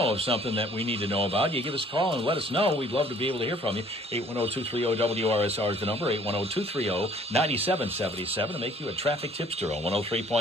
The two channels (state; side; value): normal; both; correlation 0.57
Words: of something that we need to know about, you give us a call and let us know. We'd love to be able to hear from you. 810-230-WRSR is the number, 810-230-9777 to make you a traffic tipster on